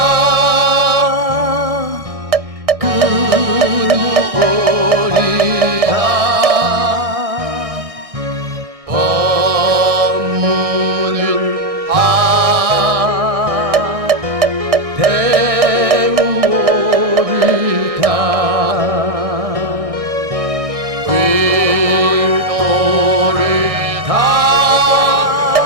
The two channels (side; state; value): left; late; 1.6 ms